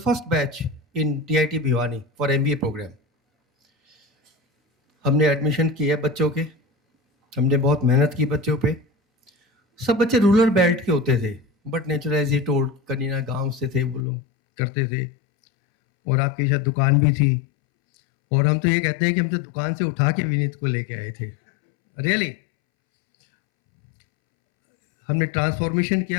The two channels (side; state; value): right; drops out; at 14.1 s